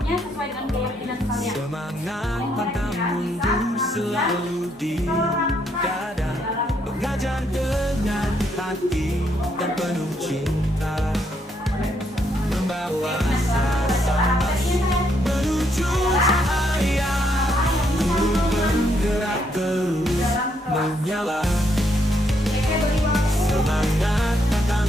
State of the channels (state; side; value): normal; both; correlation 0.74